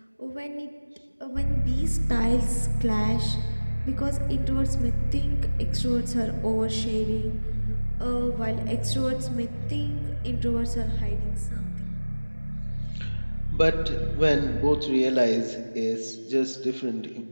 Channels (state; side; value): inverted; both; correlation -1.00